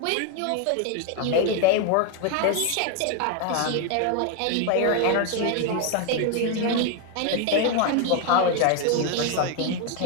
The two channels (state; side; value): different; both; correlation 0.01